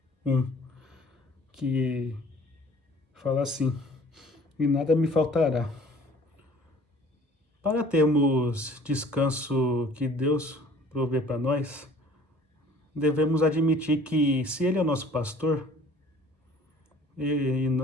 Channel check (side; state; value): both; normal; correlation 0.52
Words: 1, que fala assim: E nada me faltará. Para termos descanso que Deus provê para nós, devemos admitir que, se Ele é o nosso pastor,